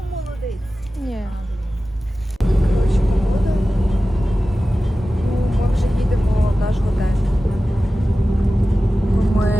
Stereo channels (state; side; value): normal; both; correlation 0.95